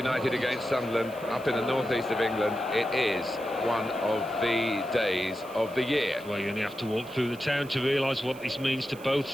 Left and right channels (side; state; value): right; noise; hiss, 22 dB below the sound